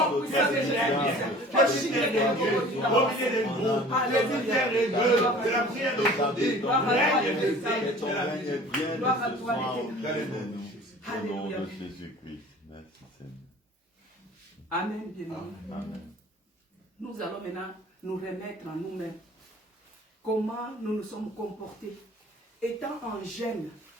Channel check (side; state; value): both; normal; correlation 0.46